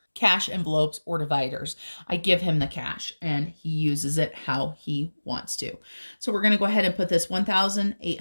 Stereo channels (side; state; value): both; inverted; correlation -1.00